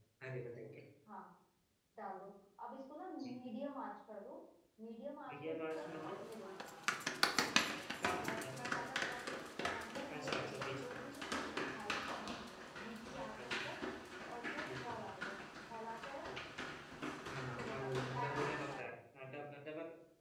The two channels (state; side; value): identical; both; correlation 1.00